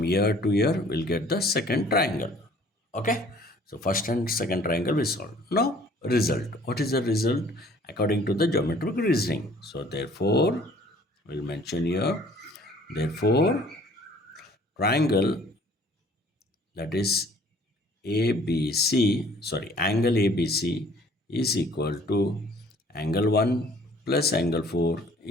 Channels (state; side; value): normal; both; correlation 0.55